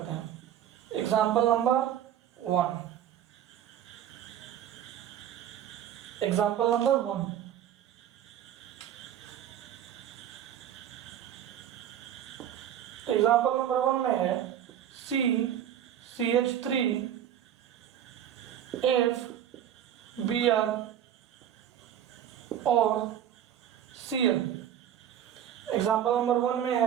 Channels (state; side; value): quieter; left; 10.4 dB